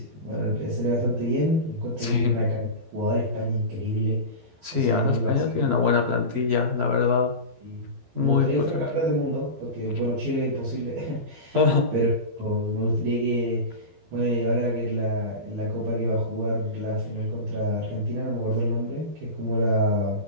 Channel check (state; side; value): late; left; 12 ms